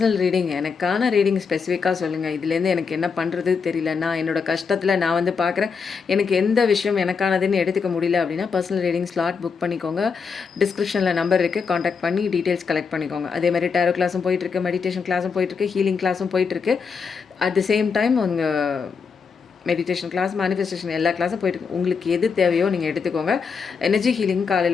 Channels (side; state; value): right; quieter; 5.6 dB